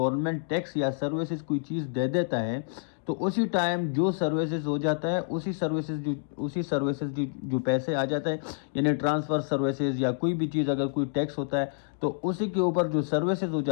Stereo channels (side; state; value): right; silent; digital silence